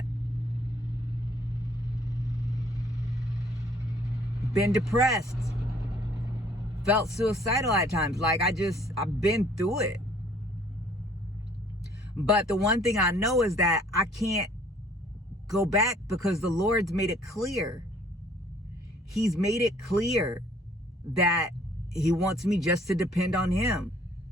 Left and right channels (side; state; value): both; normal; correlation 0.58